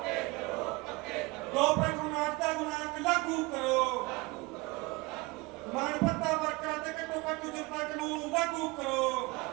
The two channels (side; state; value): left; quieter; 23.9 dB